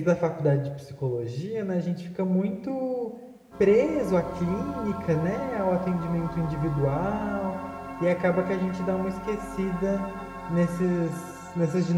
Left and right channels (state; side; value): identical; both; correlation 1.00